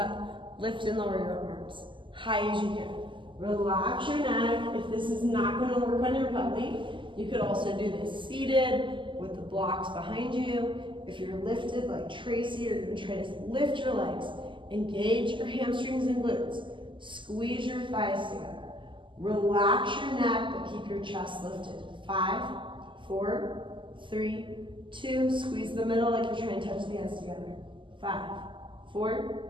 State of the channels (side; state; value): left; late; 0.24 ms